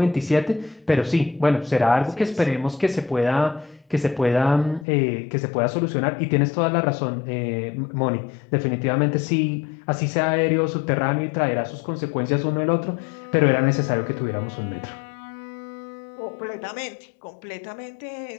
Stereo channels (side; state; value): right; drops out; at 4.9 s